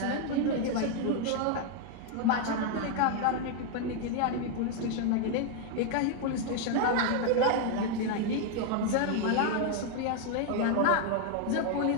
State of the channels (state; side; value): different; both; correlation 0.00